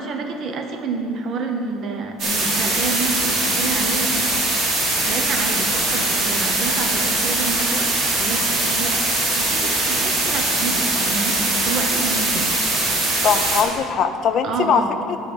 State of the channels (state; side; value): normal; both; correlation 0.49